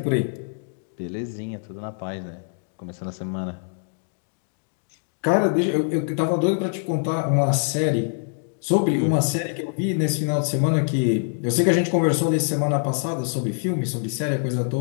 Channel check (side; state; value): right; silent; digital silence